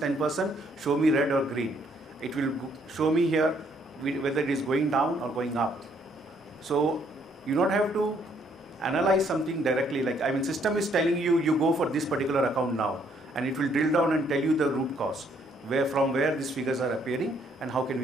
show me red or green. It will show me here whether it is going down or going up. So you don't have to analyze something directly, like system is telling you, you go for this particular account now, and it will drill down and tell you the root cause, from where these figures are appearing and how can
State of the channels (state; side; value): normal; both; correlation 0.68